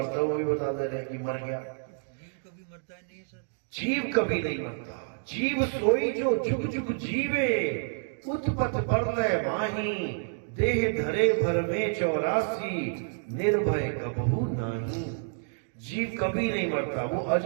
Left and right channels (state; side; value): silent; left; digital silence